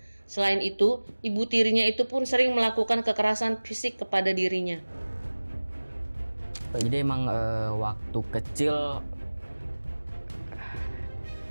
Selain itu, ibu tirinya itu pun sering melakukan kekerasan fisik kepada dirinya. Jadi emang waktu kecil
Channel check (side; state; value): both; inverted; correlation -1.00